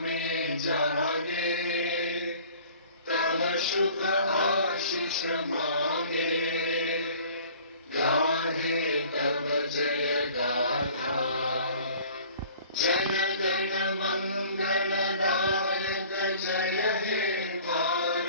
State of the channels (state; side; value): inverted; both; correlation -0.49